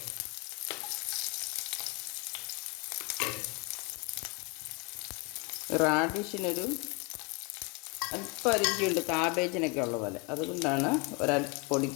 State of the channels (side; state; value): right; quieter; 31.3 dB